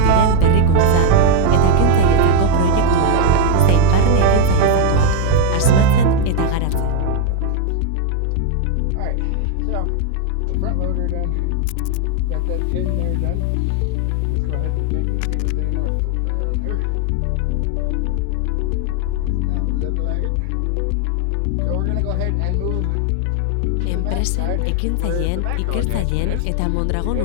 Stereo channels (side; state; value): both; different; correlation 0.01